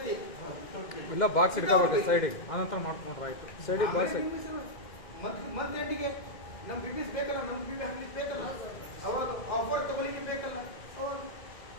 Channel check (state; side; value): late; right; 2.1 ms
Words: ಇಲ್ಲ ಬಾಕ್ಸ್ ಇಟ್ಕೋಬೇಕು ಸೈಡಿಗೆ, ಅನಂತರ ಮಾಡ್ಕೊಂಡ್ರೆ ಆಯ್ತು. ಸೈಡಿಗೆ ಬಾಕ್ಸ್ ಮತ್ತೆ ಎಂಡಿಗೆ ನಮ್ ಬಿಸ್ನೆಸ್ ಬೇಕಲ್ಲ, ನಮ್ ಬಿಲ್ ಹಾಕ್ಲಿಕ್ಕೆ ಬೇಕಲ್ಲ, ಅವಾಗ ಆಫರ್ ತಗೊಳ್ಳಿಕ್ಕೆ ಬೇಕಲ್ಲ, ಅವಾಗ